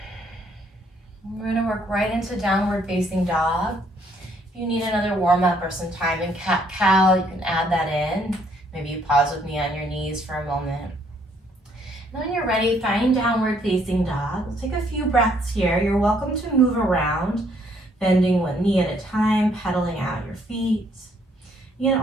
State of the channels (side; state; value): both; normal; correlation 0.67